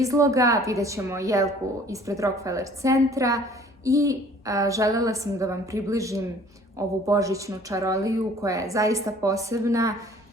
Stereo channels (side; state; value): both; normal; correlation 0.53